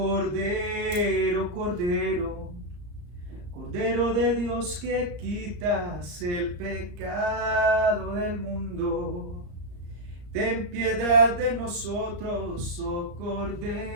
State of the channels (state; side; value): late; left; 34 ms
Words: Cordero, Cordero de Dios que quitas el pecado del mundo, ten piedad de nosotros, oh